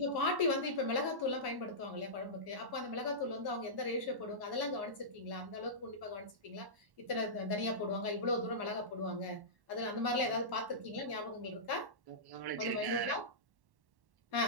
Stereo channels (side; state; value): left; late; 1.1 ms